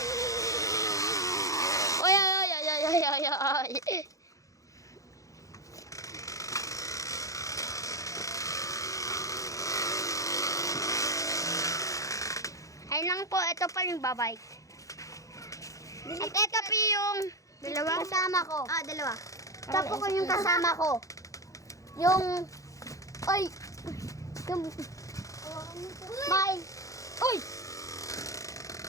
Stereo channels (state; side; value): late; right; 0.16 ms